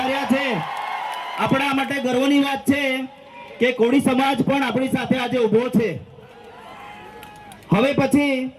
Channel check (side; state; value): both; identical; correlation 1.00